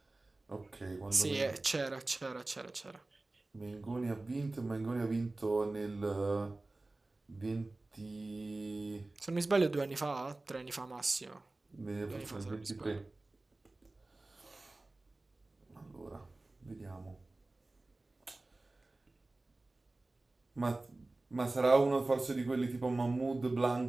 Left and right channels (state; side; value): quieter; left; 3.0 dB